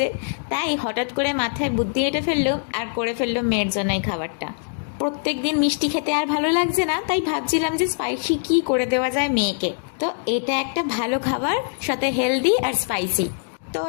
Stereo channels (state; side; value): silent; right; digital silence